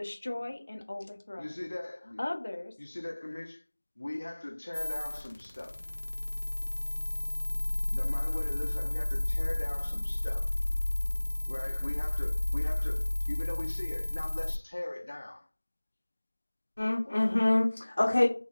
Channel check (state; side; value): inverted; both; correlation -1.00